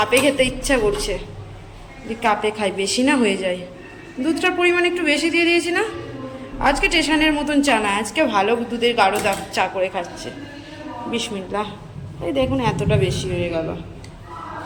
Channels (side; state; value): both; identical; correlation 1.00